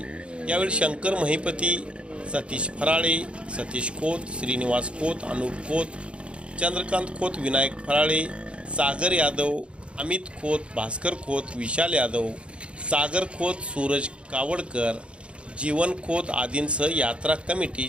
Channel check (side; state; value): left; late; 0.058 ms